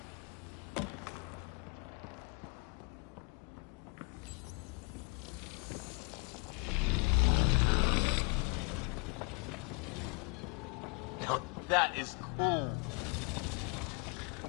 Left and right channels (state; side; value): quieter; right; 33.2 dB